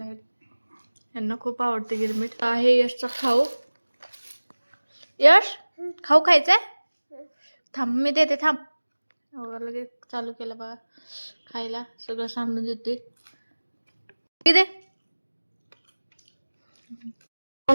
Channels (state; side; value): inverted; both; correlation -1.00